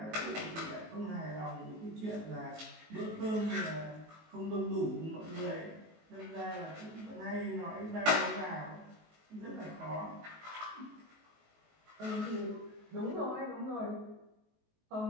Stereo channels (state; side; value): late; left; 19 ms